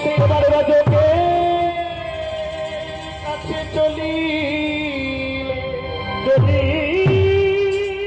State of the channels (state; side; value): identical; both; correlation 1.00